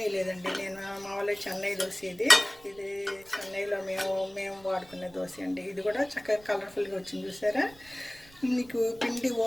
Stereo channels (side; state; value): right; noise; rumble, 24 dB below the sound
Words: లేదండి. నేను మామూలుగా చెన్నై దోశ ఇది చెన్నైలో మేము వాడుకునే దోశ అండి. ఇది కూడా చక్కగా కలర్ఫుల్గా వచ్చింది. చూసారా మీకు పిండి